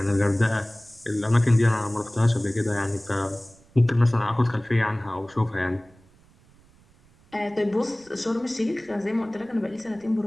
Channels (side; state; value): right; noise; rumble, 29 dB below the sound